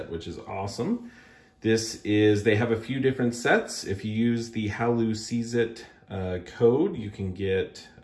which is awesome. They have a few different sets. If you use the Halloween code, you can get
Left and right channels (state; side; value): identical; both; correlation 1.00